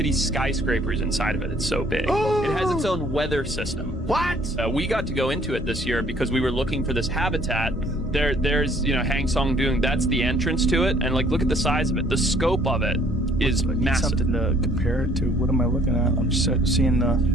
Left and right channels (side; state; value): both; normal; correlation 0.60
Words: skyscrapers inside of it. It's so big. Oh! It has its own weather system. What? We got to go into it this year because we were looking for this habitat. There's, you know, Hang Song Doong. That's the entrance to it. And like, look at the size of it. The scope of it is massive. Something to compare it to. What am I looking at? I'm just seeing the